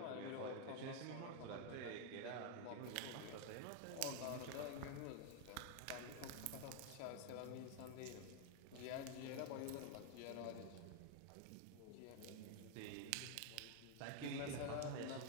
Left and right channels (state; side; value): different; both; correlation 0.01